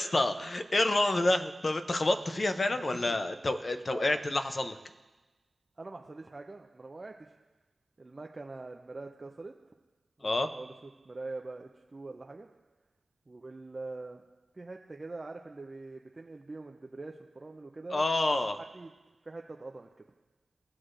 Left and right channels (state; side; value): normal; both; correlation 0.96